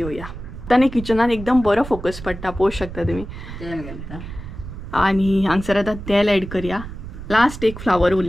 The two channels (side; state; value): right; noise; rumble, 11 dB below the sound